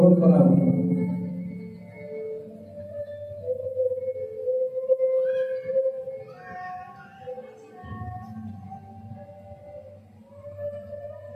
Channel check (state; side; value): identical; both; correlation 1.00